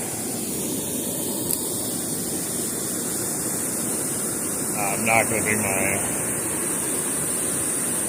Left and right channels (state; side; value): identical; both; correlation 1.00